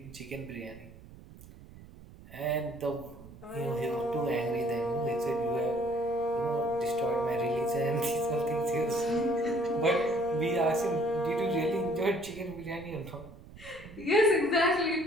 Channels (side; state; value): right; noise; rumble, 19 dB below the sound